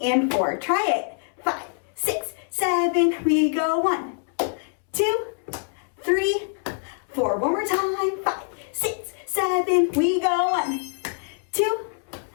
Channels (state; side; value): silent; right; 62 dB below the other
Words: and 4. Try it. 5, 6, 7, we go. 1, 2, 3, 4. One more time. 5, 6, 7, we go. 1, 2,